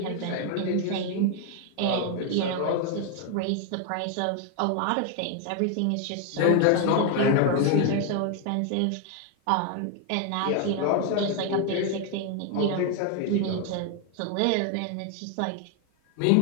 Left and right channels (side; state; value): both; different; correlation 0.01